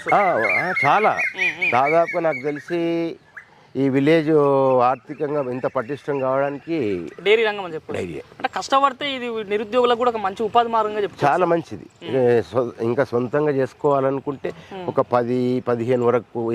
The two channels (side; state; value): both; identical; correlation 1.00